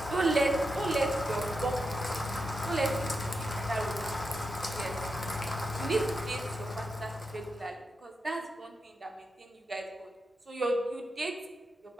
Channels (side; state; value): both; normal; correlation 0.87